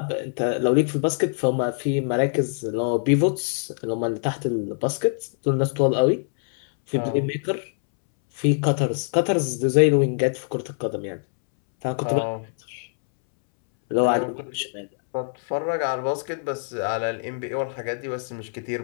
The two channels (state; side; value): silent; right; 63 dB below the other